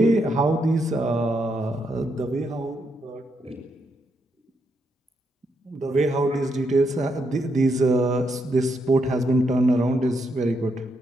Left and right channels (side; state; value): both; normal; correlation 0.79